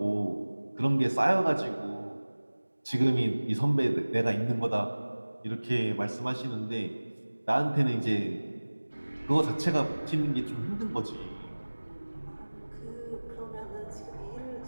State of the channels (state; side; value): inverted; both; correlation -1.00